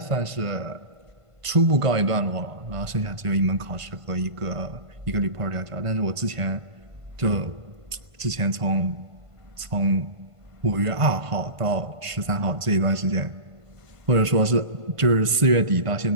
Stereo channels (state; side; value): late; left; 1.5 ms